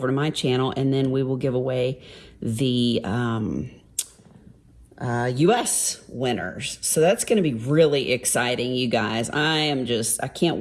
to my channel, and then we will give away the US winners. So that's going to be really exciting, you guys. I can't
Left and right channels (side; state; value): both; identical; correlation 1.00